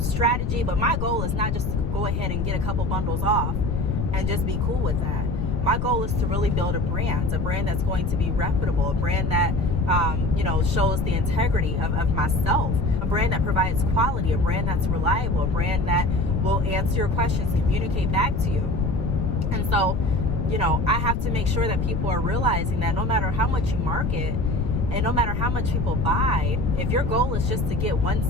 strategy. But my goal is not just to go ahead and get a couple bundles off and just be cool with that. My goal is to really build a brand that's going to be reputable, a brand that, shows the integrity of myself, a brand that provides quality, a brand that's reliable, a brand that will answer your questions, communicate back to you. And so, I have to make sure that people are realizing that no matter how much you market and no matter how much people buy, if your goal is just to get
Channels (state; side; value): noise; left; rumble, 1 dB below the sound